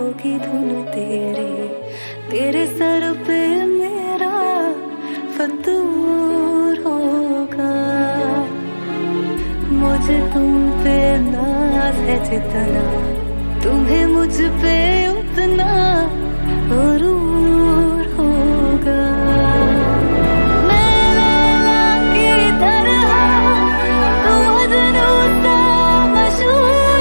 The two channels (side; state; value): both; inverted; correlation -1.00